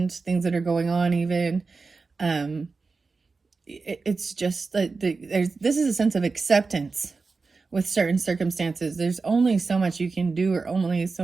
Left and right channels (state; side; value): quieter; left; 4.2 dB